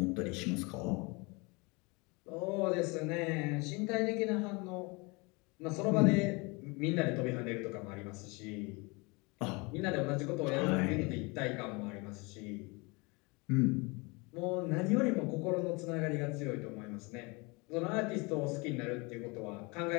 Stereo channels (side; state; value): right; quieter; 27.7 dB